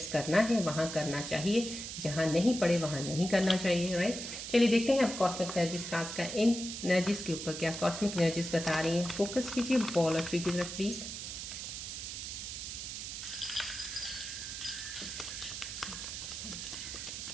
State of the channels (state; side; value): noise; right; hiss, 7 dB below the sound